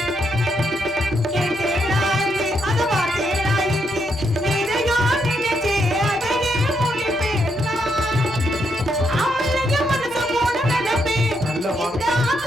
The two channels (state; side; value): normal; both; correlation 0.78